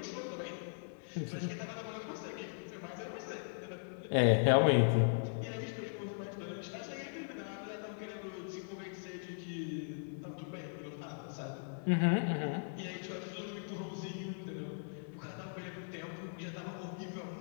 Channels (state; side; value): silent; right; 52 dB below the other